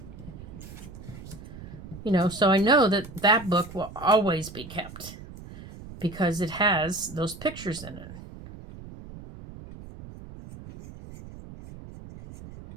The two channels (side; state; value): right; noise; rumble, 15 dB below the sound